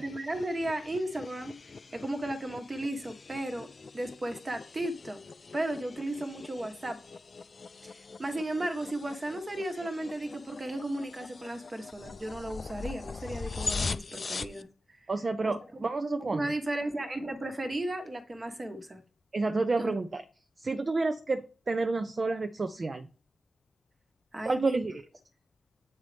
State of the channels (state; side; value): normal; both; correlation 0.94